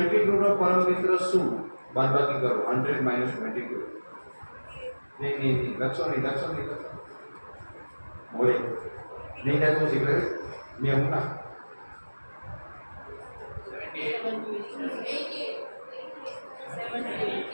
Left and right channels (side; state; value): both; inverted; correlation -1.00